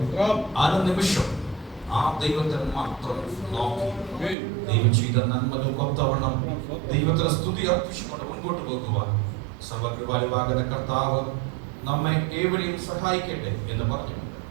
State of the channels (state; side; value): drops out; left; at 4.4 s